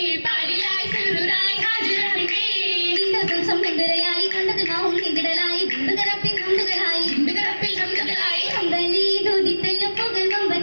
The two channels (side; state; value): both; inverted; correlation -1.00